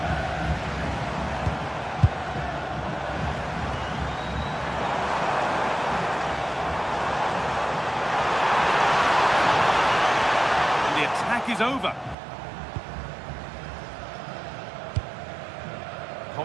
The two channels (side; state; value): left; drops out; at 12.2 s